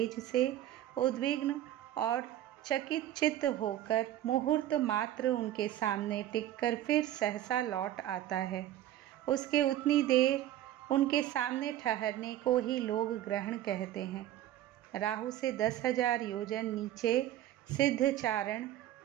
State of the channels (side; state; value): left; quieter; 12.9 dB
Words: से उद्विग्न और चकित चित्त होकर मुहूर्त मात्र उनके सामने टिककर फिर सहसा लौट आता है। उसके उतनी देर उनके सामने ठहरने को ही लोग ग्रहण कहते हैं। राहु से 10,000 योजन नीचे सिद्धचारण